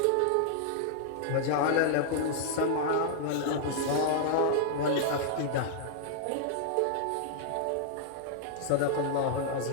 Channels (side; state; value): both; different; correlation -0.01